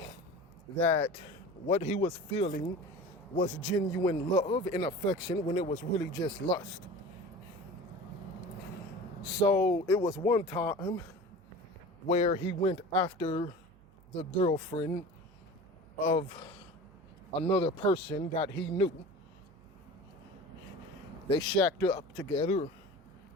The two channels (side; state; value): right; noise; hum, 27 dB below the sound